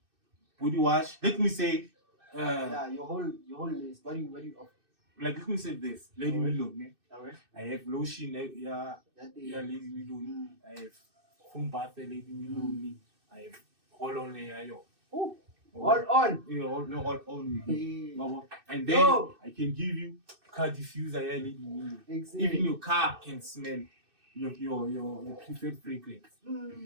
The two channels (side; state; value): left; late; 2.6 ms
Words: body wash. Let me say, Yeah, your whole list. What do you offer? like let me say this, Lady Milone. Alright. I have lotion, Lady Milone. I have foam bath, Lady Milone. I have roll-on, Oh, all on. Yeah, all on. Hey. And then I can give you car diffuser, Lady Milone. Exactly. Even your car can smell your preferred fragrance.